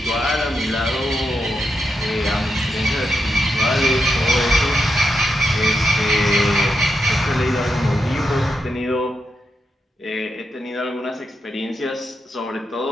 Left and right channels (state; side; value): normal; both; correlation 0.85